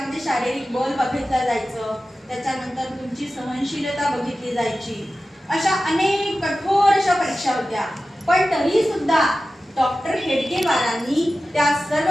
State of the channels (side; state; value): both; normal; correlation 0.94